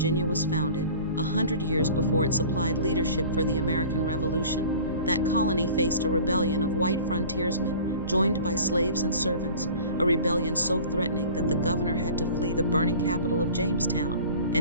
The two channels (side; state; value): both; inverted; correlation -0.43